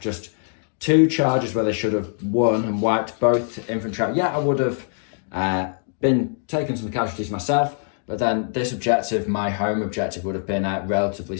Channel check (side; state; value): right; silent; digital silence